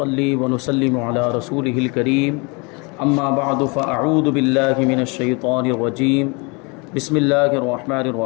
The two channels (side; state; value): right; quieter; 30.0 dB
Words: ونسلم على رسوله الكريم اما بعد فاعوذ باللہ من الشیطان الرجیم بسم اللہ الرحمن